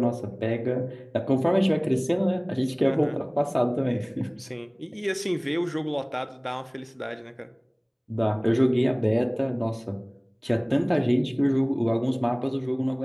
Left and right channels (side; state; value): both; identical; correlation 1.00